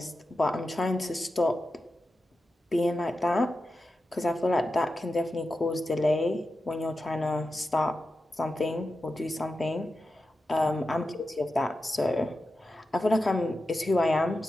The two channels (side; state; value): both; normal; correlation 0.91